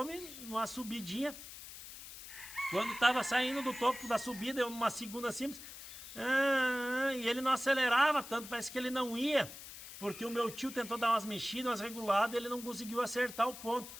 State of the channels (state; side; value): noise; left; hiss, 13 dB below the sound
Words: numa subidinha. Quando estava saindo do topo da subida, eu numa segunda simples, e ele não acelerava tanto, parece que ele não ia, porque o meu tio tentou dar umas mexidas, umas reguladas, ele não conseguiu acertar o ponto.